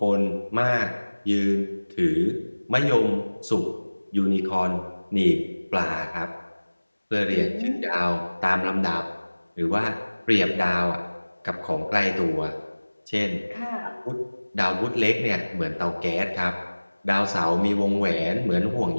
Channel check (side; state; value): both; inverted; correlation -1.00